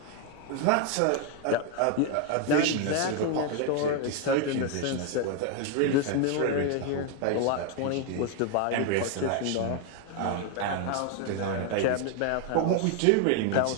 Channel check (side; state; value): both; different; correlation 0.01